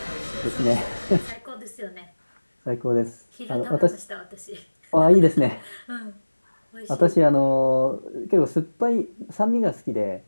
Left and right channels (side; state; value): both; inverted; correlation -1.00